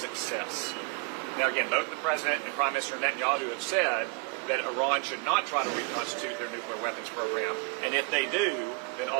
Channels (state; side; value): quieter; left; 32.3 dB